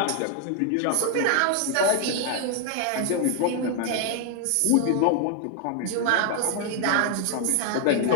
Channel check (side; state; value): both; different; correlation 0.00